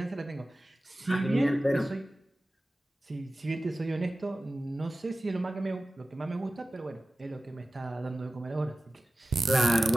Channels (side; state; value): both; normal; correlation 0.96